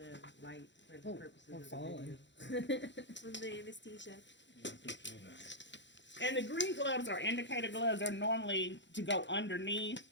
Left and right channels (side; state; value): right; late; 0.53 ms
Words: light for the purposes we're of the falling. video. On the anesthesia. And the green gloves are indicator gloves. They're normally to go underneath.